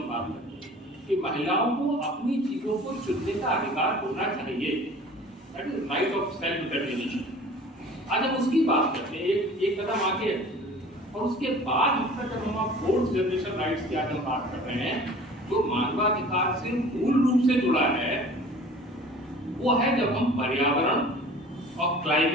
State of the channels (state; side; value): normal; both; correlation 0.45